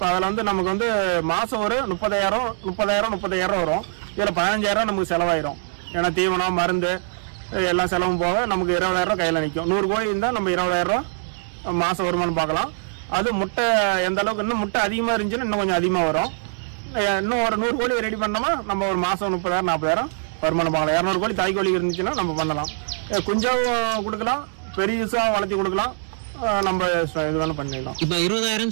அதுல வந்து நமக்கு வந்து மாசம் ஒரு 30,000 வரும். இதுல 15,000 நமக்கு செலவாயிரும். ஏன்னா தீவனம், மருந்து எல்லாம் செலவும் போக நமக்கு 20,000 கையில நிற்கும். 100 கோழி இருந்தா நம்ம 20,000 மாசம் வருமானம் பார்க்கலாம். அது முட்டை எந்த அளவுக்கு இன்னும் முட்டை அதிகமா இருந்துச்சுன்னா இன்னும் கொஞ்சம் அதிகமா வரும். இன்னும் ஒரு 100 கோழி ரெடி பண்ணோமா நம்ம ஒரு மாசம் 30,000 40,000 வருமானம் பார்க்கலாம். 200 கோழி தாய்க்கோழி இருந்துச்சுன்னா நம்ம பண்ணலாம். குஞ்சாவும் கொடுக்கலாம், பெரிய வளர்த்தி கொடுக்கலாம். நம்ம இது பண்ணிடலாம். இப்ப 20,000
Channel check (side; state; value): left; silent; 64 dB below the other